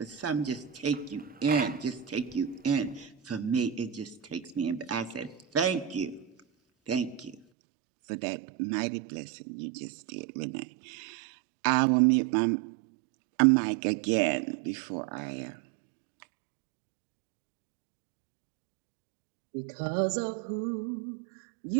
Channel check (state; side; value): drops out; left; at 7.4 s